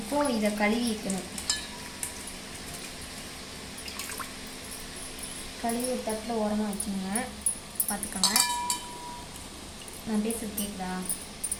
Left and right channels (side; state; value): both; identical; correlation 1.00